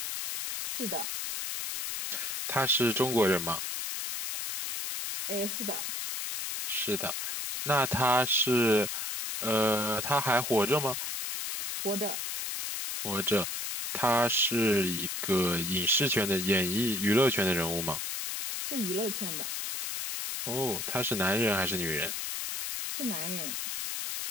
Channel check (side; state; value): left; noise; hiss, 3 dB below the sound